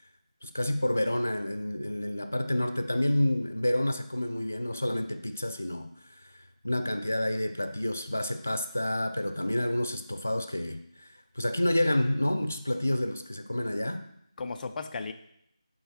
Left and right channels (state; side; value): inverted; both; correlation -0.97